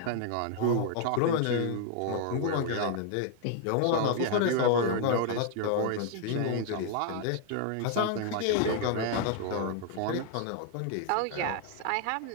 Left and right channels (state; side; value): different; both; correlation 0.00